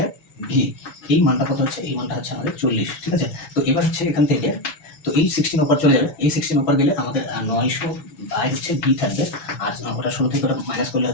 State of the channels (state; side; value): late; right; 7.1 ms